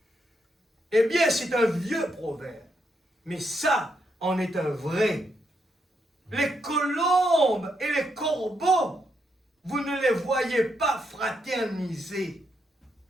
Eh bien, c'est un vieux proverbe. Mais ça, en est un vrai. Les colombes et les corbeaux, vous ne les voyez pas fraterniser.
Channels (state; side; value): normal; both; correlation 0.79